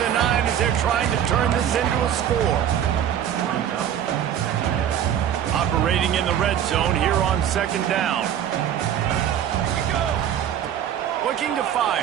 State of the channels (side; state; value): left; quieter; 9.8 dB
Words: the 9 as they're trying to turn this into a score. Operating in the red zone here on 2nd down. Looking to